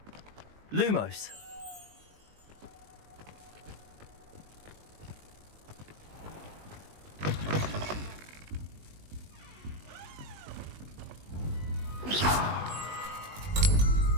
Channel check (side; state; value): left; late; 19 ms